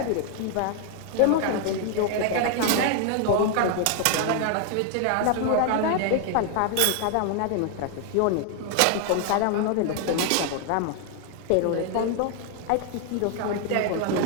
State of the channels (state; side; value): different; both; correlation 0.00